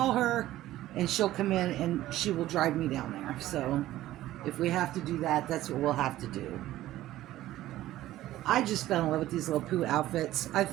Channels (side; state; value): left; quieter; 14.8 dB